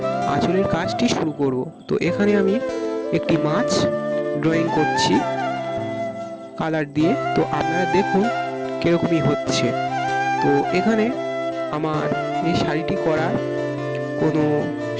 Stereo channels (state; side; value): identical; both; correlation 1.00